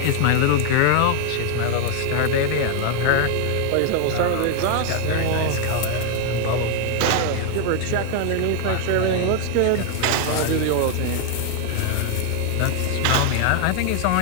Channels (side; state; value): both; different; correlation 0.00